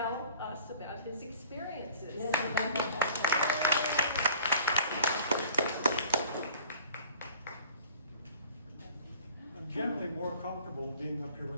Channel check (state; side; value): inverted; both; correlation -0.48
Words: us about his experiences. I'm generally more comfortable being up here